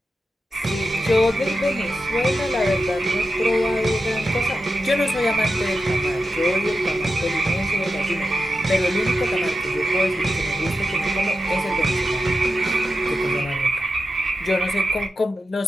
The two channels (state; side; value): normal; both; correlation 0.90